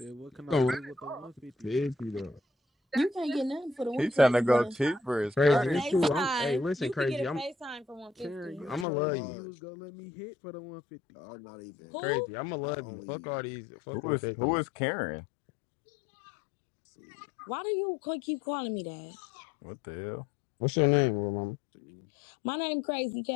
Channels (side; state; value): right; drops out; at 8.8 s